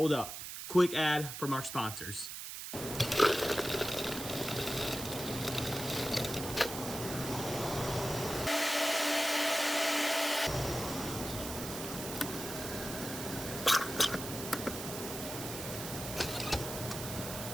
up. Quick ad from our sponsors.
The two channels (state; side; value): noise; right; hiss, 7 dB below the sound